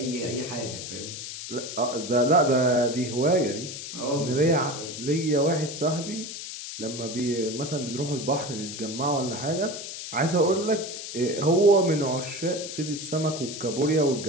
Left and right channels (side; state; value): left; noise; hiss, 9 dB below the sound